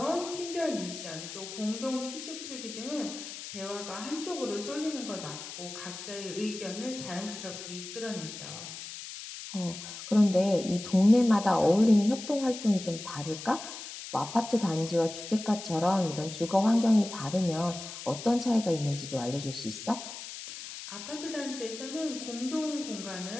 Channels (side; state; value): left; noise; hiss, 10 dB below the sound